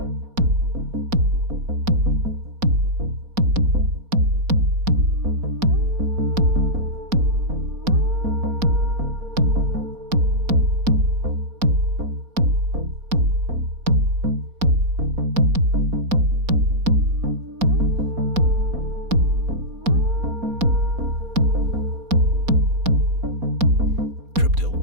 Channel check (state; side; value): late; left; 4.2 ms